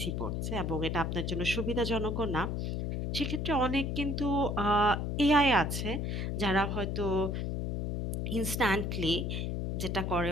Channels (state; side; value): noise; left; hum, 1 dB below the sound